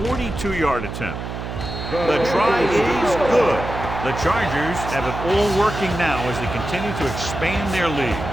42-yard attempt. The try is good. The Chargers have it all working now as they continue to expand their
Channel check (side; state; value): right; noise; hum, 7 dB below the sound